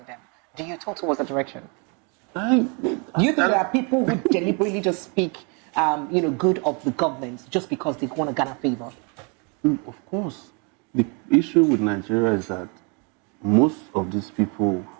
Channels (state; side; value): quieter; left; 34.4 dB